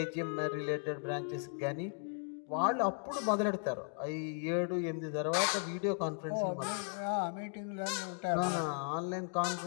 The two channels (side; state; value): right; silent; 54 dB below the other